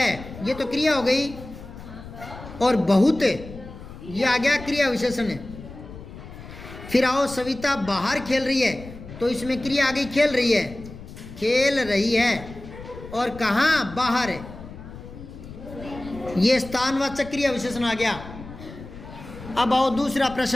ये तो क्रिया हो गई। और बहुत, ये आ गया क्रिया विशेषण है। फिर आओ, सविता बाहर खेल रही है, तो इसमें क्रिया आ गई खेल रही है, खेल रही है। और कहाँ? बाहर है, ये स्थानवाचक क्रिया विशेषण आ गया। अब आओ दूसरा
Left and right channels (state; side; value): noise; left; rumble, 14 dB below the sound